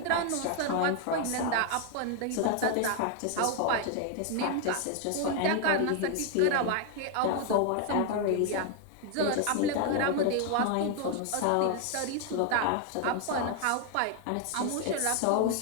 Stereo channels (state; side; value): different; both; correlation 0.01